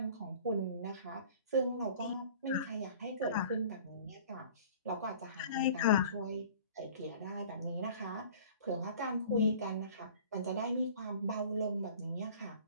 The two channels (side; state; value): both; inverted; correlation -0.46